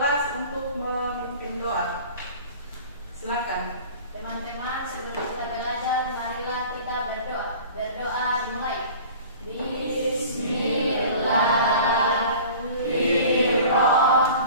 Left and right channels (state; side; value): inverted; both; correlation -0.43